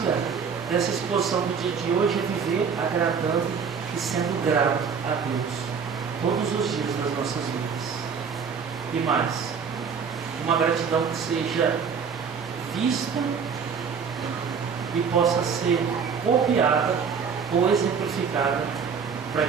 dessa exposição do dia de hoje é viver agradando e sendo grato a Deus todos os dias das nossas vidas. E mais, uma gratidão que seja vista e possa ser copiada ou exemplificada para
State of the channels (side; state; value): left; quieter; 6.3 dB